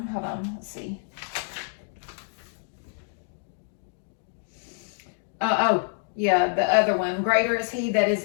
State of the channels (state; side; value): silent; right; 60 dB below the other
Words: hold on, let's see. The other one. Greater is he that is